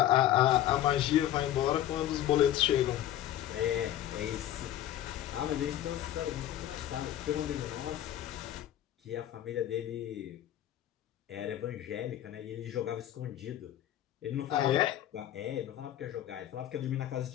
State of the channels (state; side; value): quieter; right; 12.4 dB